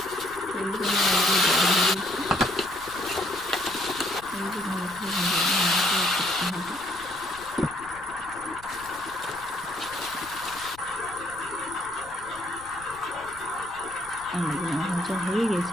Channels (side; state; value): left; noise; rumble, 22 dB below the sound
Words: আলুগুলো ভাজা হয়ে